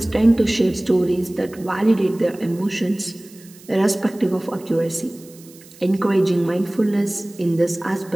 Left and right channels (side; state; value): right; noise; hiss, 23 dB below the sound